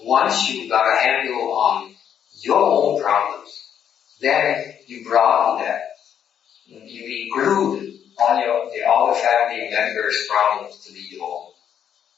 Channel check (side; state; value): right; quieter; 8.9 dB